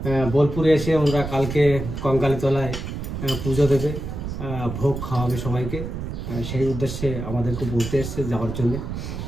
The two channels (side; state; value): right; noise; rumble, 6 dB below the sound